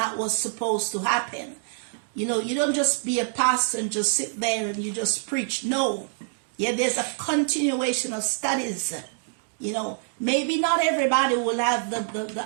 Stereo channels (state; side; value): silent; left; digital silence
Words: was supposed to happen. You know, you don't just be a pastor and just sit there and you just preach. No. Yeah, there's a continuation of studies. You know, maybe not everybody will have